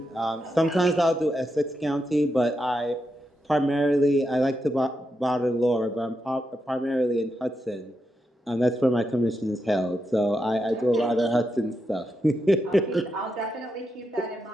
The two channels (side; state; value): both; normal; correlation 0.85